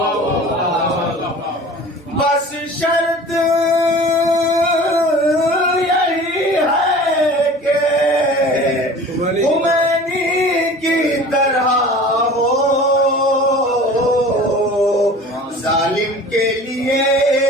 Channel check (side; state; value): both; normal; correlation 0.42